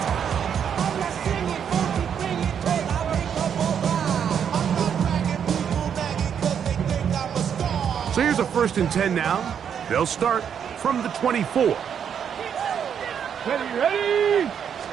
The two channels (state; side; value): quieter; left; 8.0 dB